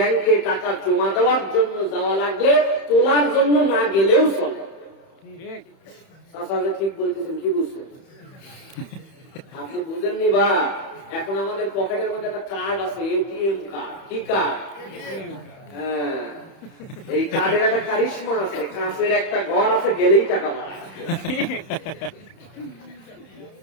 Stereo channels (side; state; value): right; late; 31 ms